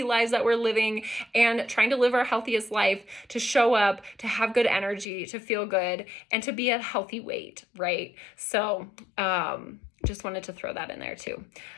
lives that we're living and trying to live our healthiest life, to show up, to have good energy, to feel good, and to be at a healthy weight, right? So, just wanted to throw that in there too.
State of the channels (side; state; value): right; drops out; at 5.1 s